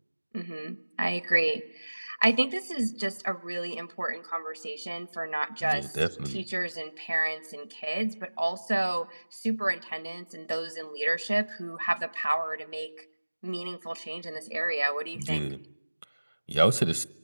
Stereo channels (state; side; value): inverted; both; correlation -1.00